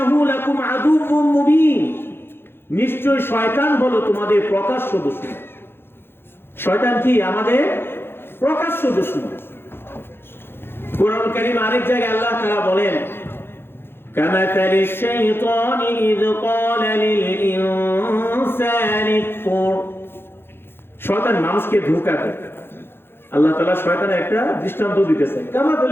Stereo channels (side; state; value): right; late; 0.11 ms